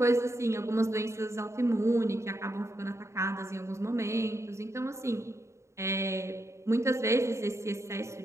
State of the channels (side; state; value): left; late; 0.14 ms